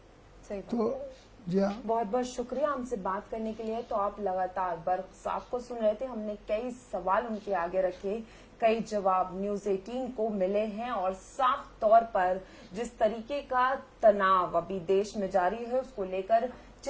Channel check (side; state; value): both; identical; correlation 1.00